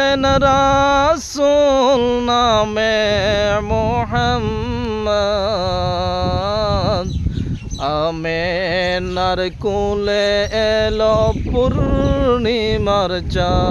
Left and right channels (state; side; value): identical; both; correlation 1.00